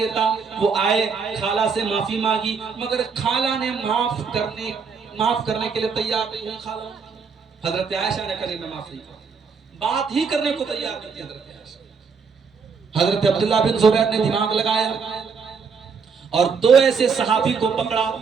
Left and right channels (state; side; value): quieter; left; 5.6 dB